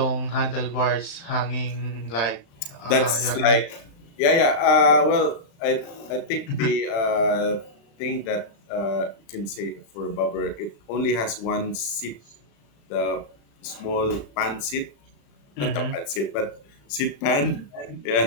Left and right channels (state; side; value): late; right; 35 ms